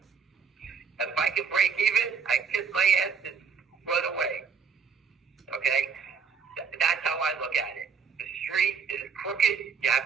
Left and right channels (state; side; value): quieter; left; 6.0 dB